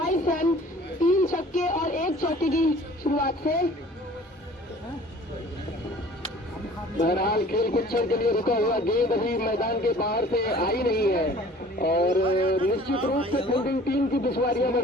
रन, 3 छक्के और 1 चौके की शुरुआत से। बहरहाल खेल कुछ क्षण के लिए रुका हुआ, गेंद अभी मैदान के बाहर से आई नहीं है और निश्चित रूप से फील्डिंग टीम की दुश्वारियां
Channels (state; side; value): normal; both; correlation 0.49